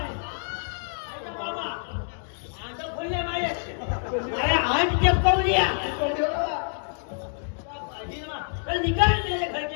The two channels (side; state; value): right; silent; digital silence